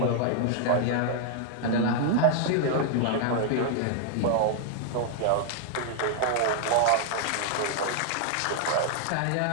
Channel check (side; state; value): both; different; correlation 0.00